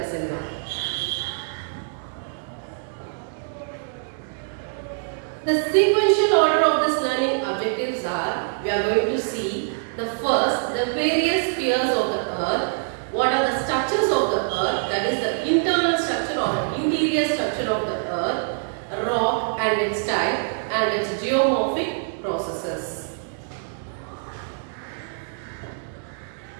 now. The sequential order of this learning objectives are, we are going to see the first, the various spheres of the earth. What are the structures of the earth? That is the internal structure or interior structure of the earth, rock and its type, and its geomorphic processes.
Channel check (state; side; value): silent; left; 62 dB below the other